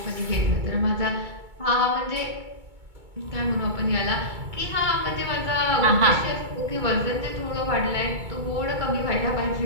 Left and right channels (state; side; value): late; left; 2.3 ms